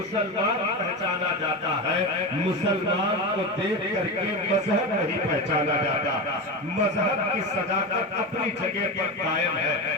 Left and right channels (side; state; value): both; normal; correlation 0.20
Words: پہچانا جاتا ہے، مسلمان کو دیکھ کر کے مذہب نہیں پہچانا جاتا۔ مذہب کی صداقت اپنی جگہ پر قائم ہے،